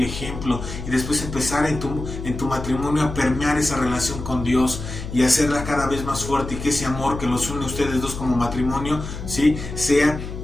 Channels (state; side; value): noise; left; hum, 8 dB below the sound